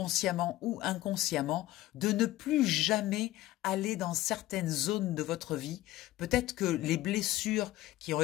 ou inconsciemment, de ne plus jamais aller dans certaines zones de votre vie. Peut-être que les blessures qui ont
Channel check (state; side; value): quieter; right; 16.1 dB